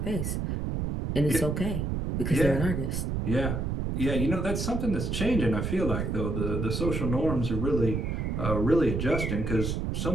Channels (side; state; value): right; noise; rumble, 1 dB below the sound